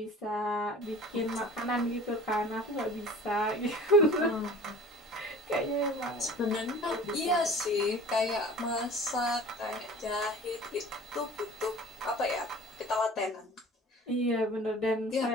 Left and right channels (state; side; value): normal; both; correlation 0.43